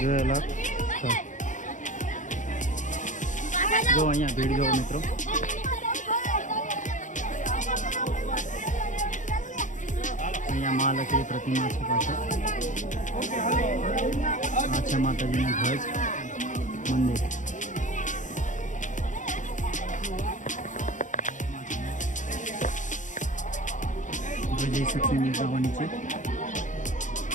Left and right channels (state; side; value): late; right; 0.36 ms